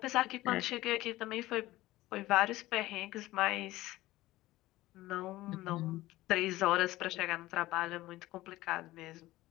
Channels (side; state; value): right; quieter; 17.3 dB